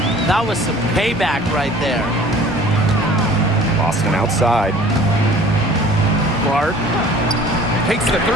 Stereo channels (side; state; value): both; normal; correlation 0.49